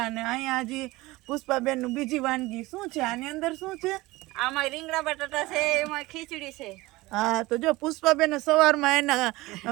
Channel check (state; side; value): quieter; left; 20.3 dB